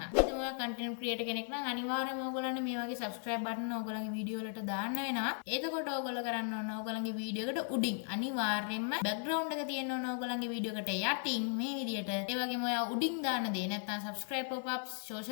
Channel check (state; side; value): silent; right; 53 dB below the other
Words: ඉතින් ඔයා content creator කෙනෙක් නම් අනිවාර්යයෙන්ම ඔයගොල්ලන්ට මේ වගේ subscribe button ඔයගොල්ලන්ගේ වීඩියෝ වලට දාන්න වෙනවා. එතකොට ඔයගොල්ලෝ කරන්න ඕන ඔයගොල්ලන්ගේ වීඩියෝ එකට උඩින් අනිවාර්යයෙන්ම background එක තියෙන්න ඕන ඔයගොල්ලන්ගේ වීඩියෝ එකට යටින් මේ විදිහට. ඒ වගේම ඔයා උඩින් දාන දේ නැත්නම් subscribe pop-ups